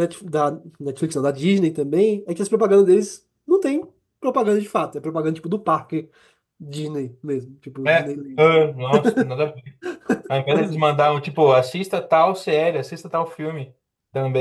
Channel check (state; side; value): identical; both; correlation 1.00